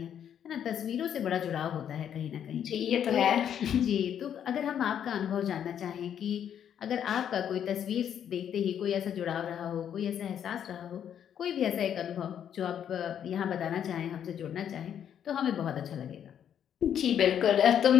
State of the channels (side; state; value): right; quieter; 9.2 dB